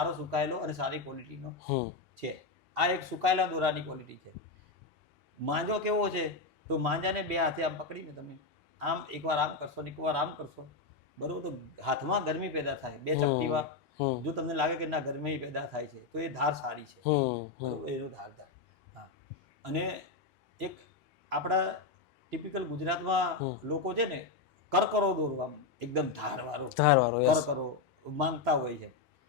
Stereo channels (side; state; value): right; quieter; 4.2 dB